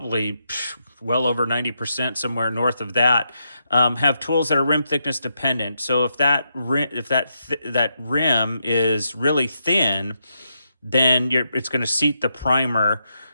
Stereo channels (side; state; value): both; inverted; correlation -0.82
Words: well over 90%, somewhere north of that, have tools that are rim thickness dependent. So if that rim is really thin, then it's going to seat the primer